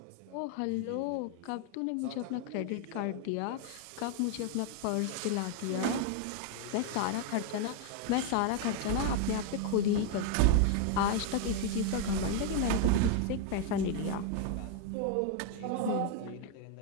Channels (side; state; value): both; different; correlation 0.00